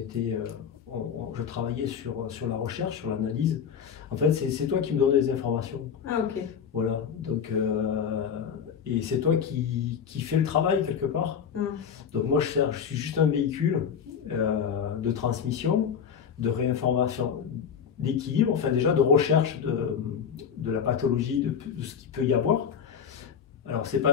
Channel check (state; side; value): quieter; right; 7.4 dB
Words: je travaillais sur la recherche, sur l'analyse. En fait, c'est toi qui me donnes des informations. Ah, ok. Voilà, donc, et c'est toi qui fais le travail quelque part. Donc moi, je suis juste un véhicule de transmission, de réinformation, d'équilibre, enfin déjà de recherche de la pathologie, de ce qu'il peut y avoir. Alors, je